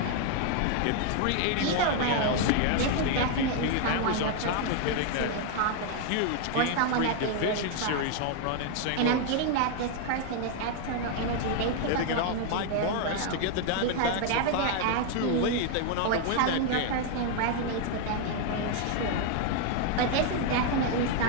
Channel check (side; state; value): both; different; correlation 0.00